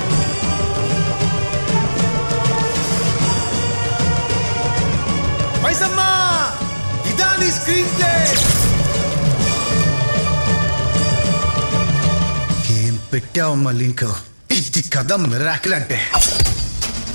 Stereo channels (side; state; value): both; inverted; correlation -1.00